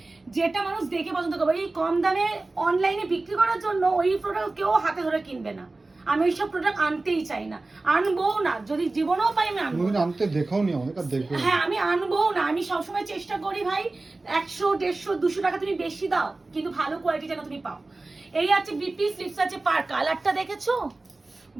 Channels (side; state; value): left; quieter; 3.2 dB